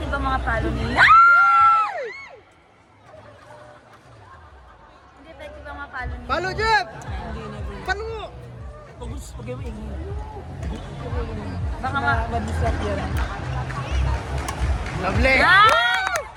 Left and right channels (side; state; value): both; identical; correlation 1.00